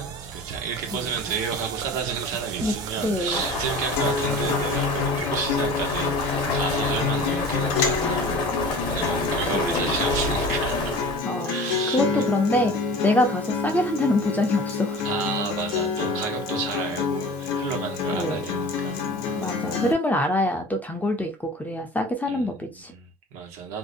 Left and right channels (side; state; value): both; normal; correlation 0.39